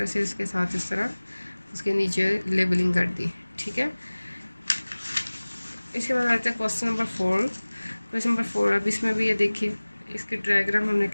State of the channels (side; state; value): both; inverted; correlation -1.00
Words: से इसके साथ इस तरह उसके नीचे लेबलिंग कर दी, ठीक है। इसके बाद आते हैं क्वेश्चन नंबर 4। क्वेश्चन नंबर 4 अब इसमें भी ये देखिए इसके डायग्राम हमने